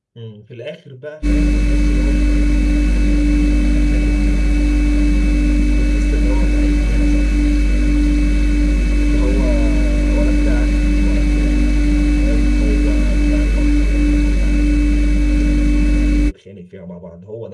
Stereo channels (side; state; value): both; identical; correlation 1.00